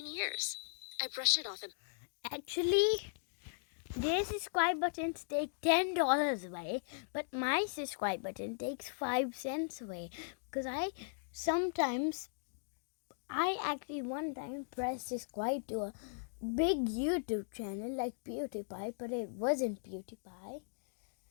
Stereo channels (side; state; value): right; silent; digital silence